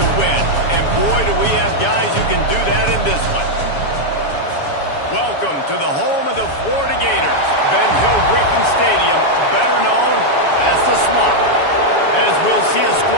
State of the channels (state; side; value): late; right; 7.1 ms